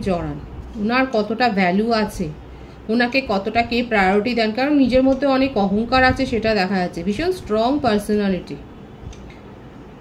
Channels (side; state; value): both; identical; correlation 1.00